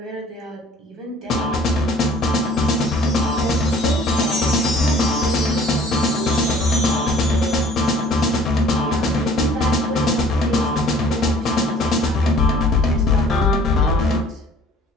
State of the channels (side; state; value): both; normal; correlation 0.53